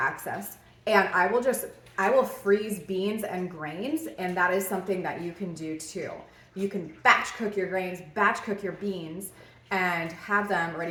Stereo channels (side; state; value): both; identical; correlation 1.00